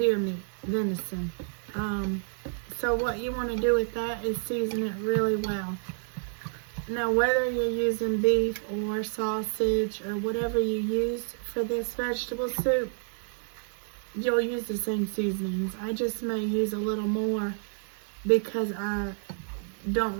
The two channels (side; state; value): left; silent; 56 dB below the other